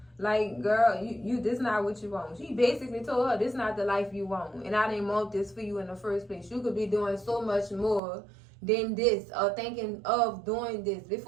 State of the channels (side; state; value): left; drops out; at 8.0 s